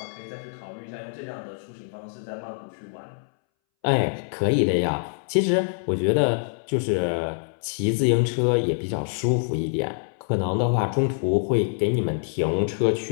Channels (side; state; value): right; silent; 62 dB below the other